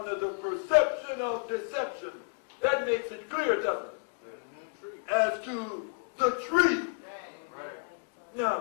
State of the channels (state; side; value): silent; right; 57 dB below the other